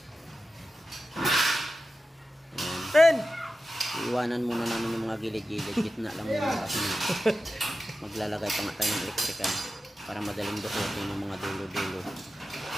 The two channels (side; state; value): both; normal; correlation 0.92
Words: Ten! Iwanan muna namin yung mga gilid-gilid. Gitna lang muna kasi maglalagay pa nga tayo ng electrical para madaling dukutin yung mga dulo-dulo.